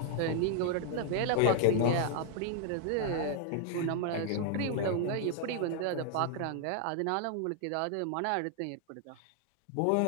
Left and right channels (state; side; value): different; both; correlation 0.00